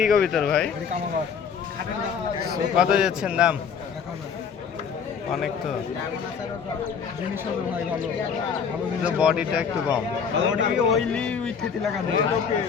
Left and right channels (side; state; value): right; quieter; 6.7 dB